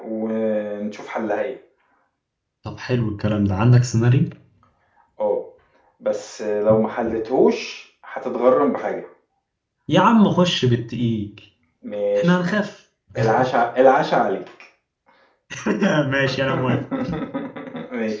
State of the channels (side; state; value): both; identical; correlation 1.00